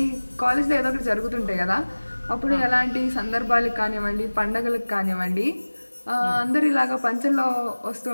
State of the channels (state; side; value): inverted; both; correlation -1.00